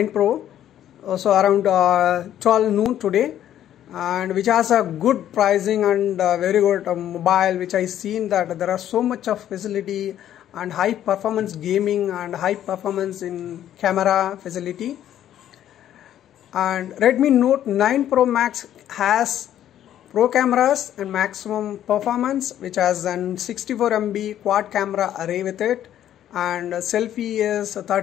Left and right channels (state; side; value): quieter; right; 11.3 dB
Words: Pro. So around 12 noon today, and which has a good pricing and very good mobile, which I seen that there are so much of facility and high performance gaming and high performance in camera facility. And Redmi Note 9 Pro Max has Pro cameras and maximum performance, which has an 64 MP quad camera array with it, and selfie is